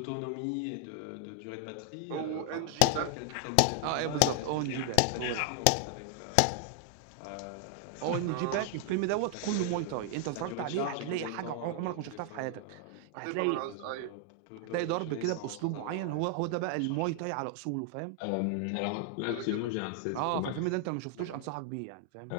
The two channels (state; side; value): different; both; correlation 0.00